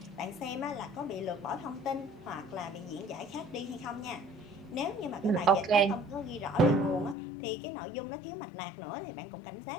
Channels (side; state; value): right; drops out; at 7.2 s